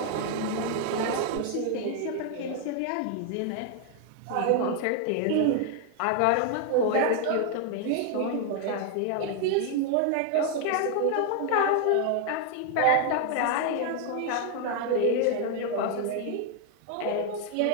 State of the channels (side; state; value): both; different; correlation 0.00